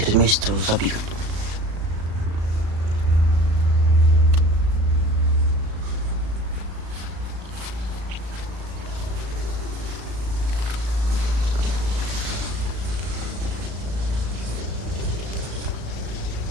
месяц его забью.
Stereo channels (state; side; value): late; left; 36 ms